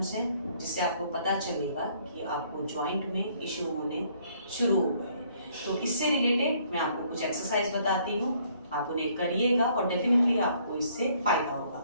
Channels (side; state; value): both; inverted; correlation -0.64